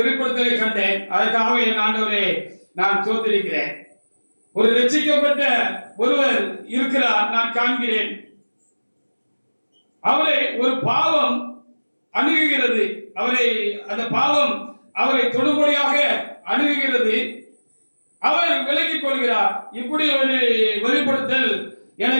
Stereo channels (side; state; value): both; inverted; correlation -1.00